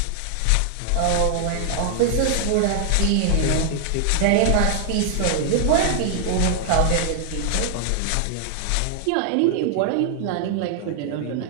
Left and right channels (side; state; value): both; different; correlation 0.00